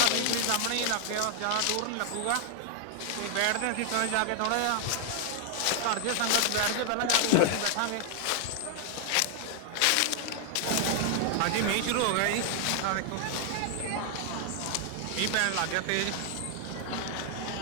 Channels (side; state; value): both; different; correlation 0.00